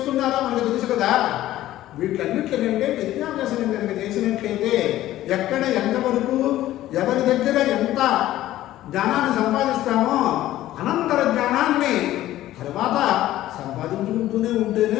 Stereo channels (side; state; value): right; quieter; 14.4 dB